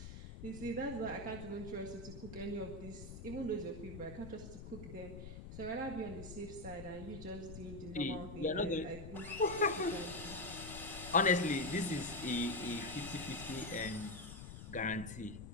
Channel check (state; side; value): noise; left; rumble, 10 dB below the sound